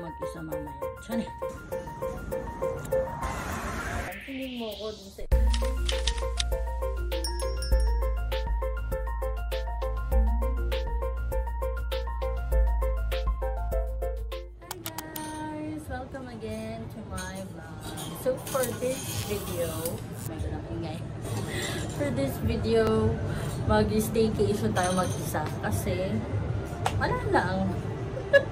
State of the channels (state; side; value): identical; both; correlation 1.00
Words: mag-isa mamaya? Tiyan eh. Tingin mo ko dun sa... Hi guys! Welcome again to my vlog. So, for this video... For this video, mag-staycation tayo mag-isa kasi wala lang.